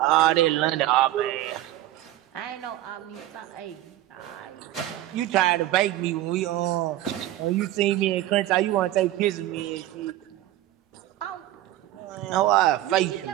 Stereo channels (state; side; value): quieter; left; 14.5 dB